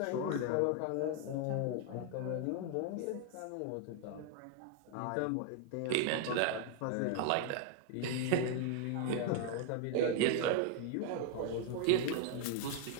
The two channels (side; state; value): both; different; correlation 0.00